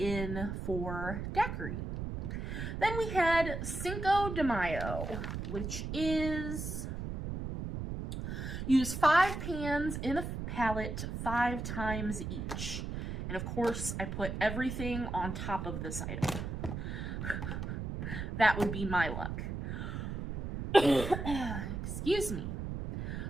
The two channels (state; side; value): noise; right; rumble, 5 dB below the sound